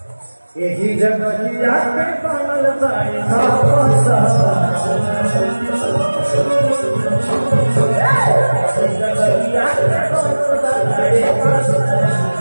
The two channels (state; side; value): inverted; both; correlation -1.00